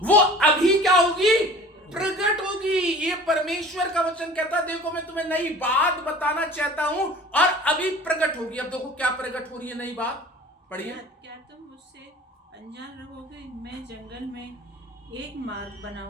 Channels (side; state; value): both; normal; correlation 0.44